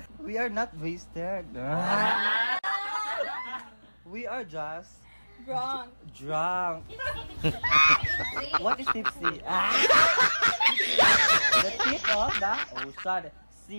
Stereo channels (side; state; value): both; inverted; correlation -1.00